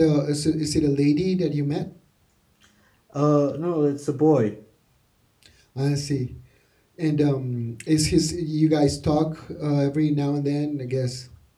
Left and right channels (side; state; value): both; identical; correlation 1.00